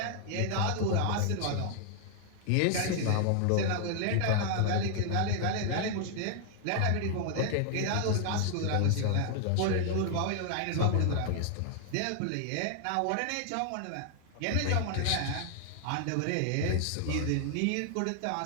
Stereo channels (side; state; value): both; different; correlation 0.00